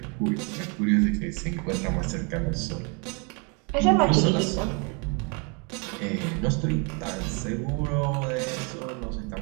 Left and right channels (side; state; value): left; quieter; 34.2 dB